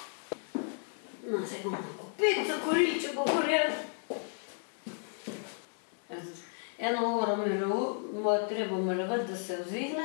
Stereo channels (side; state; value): right; silent; 56 dB below the other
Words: No, se bomo opet zakorili, če bo gorel. 1 uro treba mirovati, da se